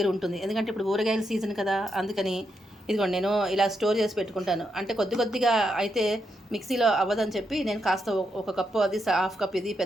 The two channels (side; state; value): both; normal; correlation 0.82